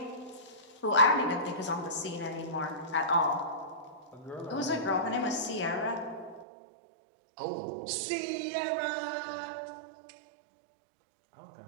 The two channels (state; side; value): drops out; left; at 6.5 s